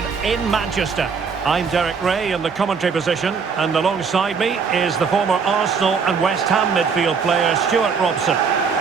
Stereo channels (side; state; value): left; quieter; 5.7 dB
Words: in Manchester. I'm Derek Ray in the commentary position, and alongside me is the former Arsenal and West Ham midfield player Stuart Robson.